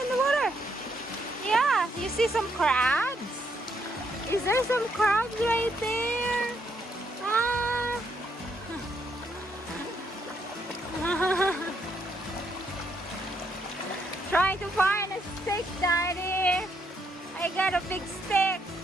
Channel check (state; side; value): normal; both; correlation 0.75